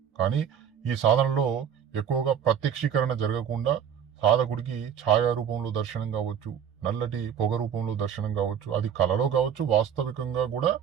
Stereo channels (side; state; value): left; quieter; 8.5 dB